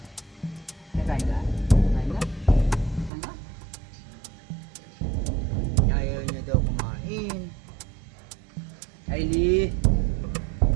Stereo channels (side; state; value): left; drops out; at 3.1 s